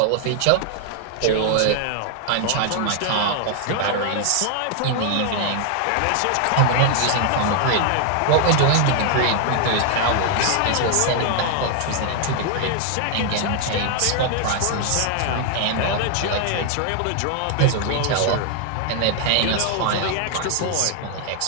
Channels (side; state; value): both; different; correlation 0.00